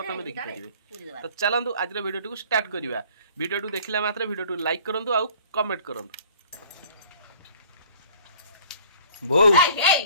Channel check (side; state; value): both; inverted; correlation -0.51